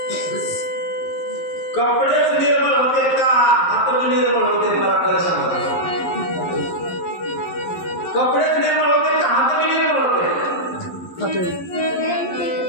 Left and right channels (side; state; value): right; late; 11 ms